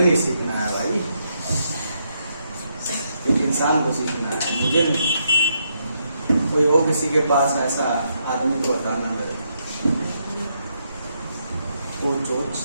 नहीं सीखना है भाई, एक इंसान को सीखना है, मुझे नहीं। कोई हो किसी के पास ऐसा आदमी को बताना मेरे को, तो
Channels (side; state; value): both; inverted; correlation -0.78